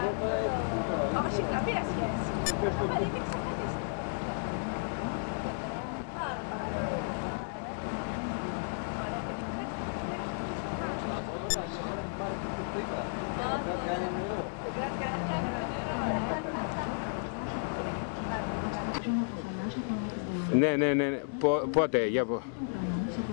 Όχι, καμία σχέση. Αλλά είναι εξαφανιστή. Ναι. Πότε, για πω.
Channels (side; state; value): right; silent; digital silence